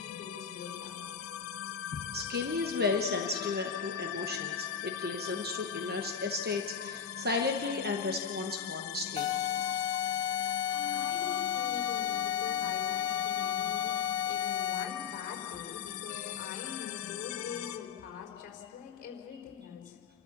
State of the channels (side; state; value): right; quieter; 6.8 dB